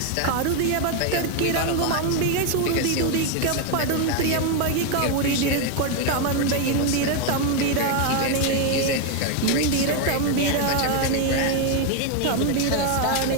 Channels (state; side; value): different; both; correlation 0.01